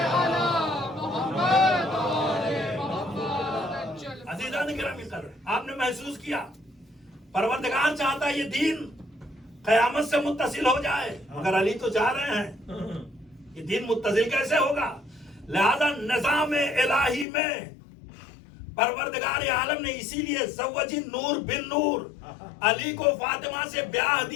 آپ نے محسوس کیا پروردگار چاہتا ہے یہ دین قیامت سے متصل ہو جائے، مگر علی تو جا رہے ہیں، یہ دین متصل کیسے ہوگا؟ لہذا نظام الہی میں پروردگار عالم نے اسی لیے زوجی نور بن نور، علی کو فاطمہ سے بیاہ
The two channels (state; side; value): drops out; right; at 17.2 s